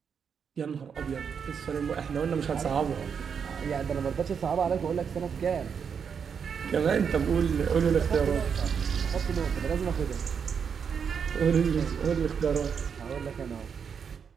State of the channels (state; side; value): quieter; left; 6.8 dB